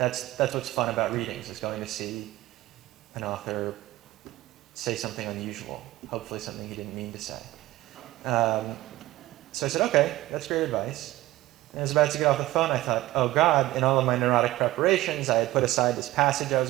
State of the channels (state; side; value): quieter; left; 17.0 dB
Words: what's fun about readings, is going to see an author say something unusual, hopefully something he didn't mean to say. So I said, okay, that's great advice. And I was about to get off the phone, I thought, oh God, in all of my neurotic preparations, I had put aside this passage I